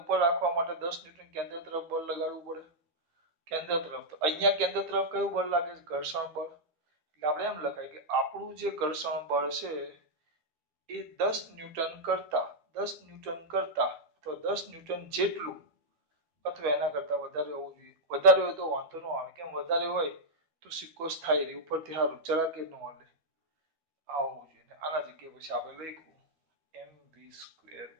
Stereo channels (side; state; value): left; late; 12 ms